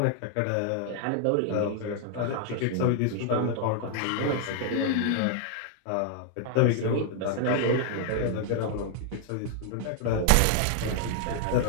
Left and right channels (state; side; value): different; both; correlation 0.00